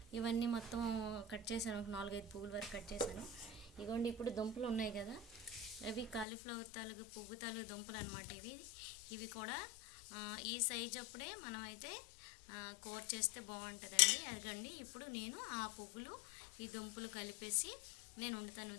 ఇవన్నీ మొత్తం కట్ చేశాను, ఒక 4-5 పువ్వుల వరకు కట్ చేశాను. ఇగోండి, ఇప్పుడు దుంపలు ఉన్నాయి కదా, అవి కాలీఫ్లవర్ తాలూకు పువ్వు తాలూకు దుంపలు అనమాట. ఇవి కూడా ఈ సైజ్ అప్పుడే మనం అయితే కూర చేస్తే బాగుంటుందండి. అదిగండి, ఇప్పుడు నేను ఆ పువ్వులు ఈ దుంపలు కలిపేసి నేను వండుతాను.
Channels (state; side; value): drops out; right; at 6.2 s